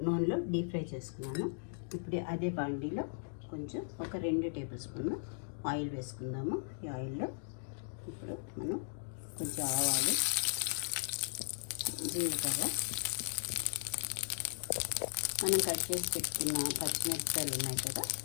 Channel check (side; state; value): right; silent; digital silence